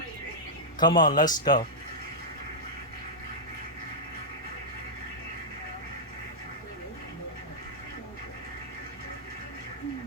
Come on, let's go.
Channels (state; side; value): normal; both; correlation -0.07